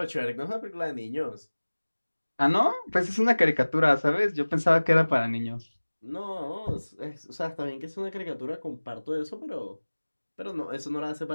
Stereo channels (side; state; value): both; inverted; correlation -1.00